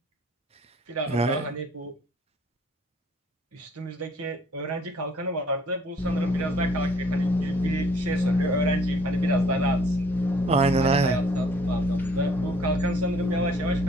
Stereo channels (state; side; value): normal; both; correlation 0.58